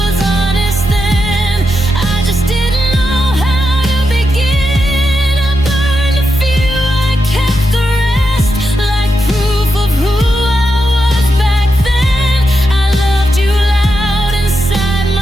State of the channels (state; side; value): normal; both; correlation 0.86